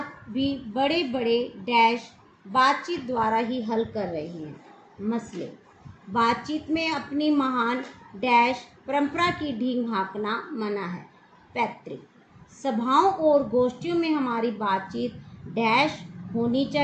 भी बड़े बड़े डैश बातचीत द्वारा ही हल कर रहे हैं। मसले। बातचीत में अपनी महान डैश परंपरा की ढींग हाँकना मना है। पैतृक। सभाओं और गोष्ठियों में हमारी बातचीत डैश होनी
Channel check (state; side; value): identical; both; correlation 1.00